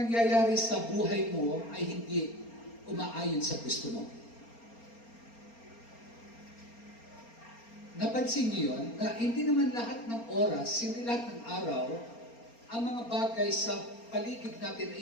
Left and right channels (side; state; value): right; late; 4.3 ms